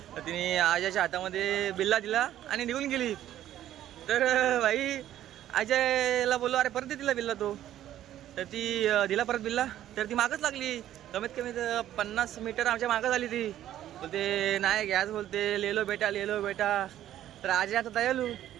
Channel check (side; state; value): left; quieter; 12.2 dB